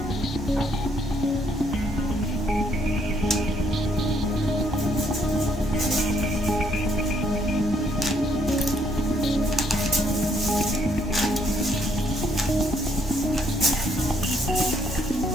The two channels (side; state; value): both; normal; correlation 0.69